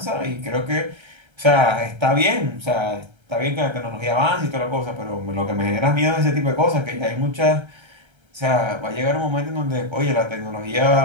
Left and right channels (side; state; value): left; late; 1.3 ms